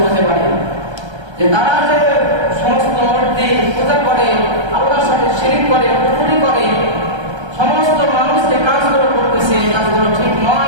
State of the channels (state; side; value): late; left; 1.3 ms